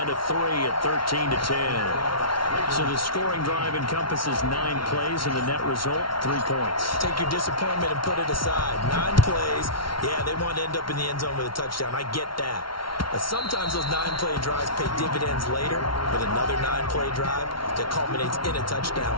to 3 at 13-10. So the scoring drive encompasses 9 plays, and the net result, 3 points. Take your disappointment and put it aside. 9 plays. Yeah, they want to end up in the end zone with a touchdown. I get that. But sometimes those 9-play drives pay dividends later with another 9-play drive that culminates in a touchdown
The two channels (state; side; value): late; right; 0.74 ms